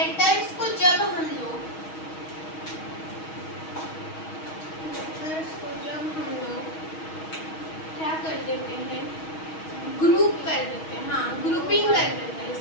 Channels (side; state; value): right; late; 6.3 ms